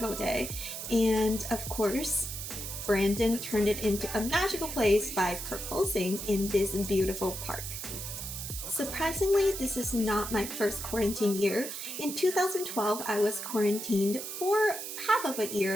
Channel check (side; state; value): right; noise; hiss, 7 dB below the sound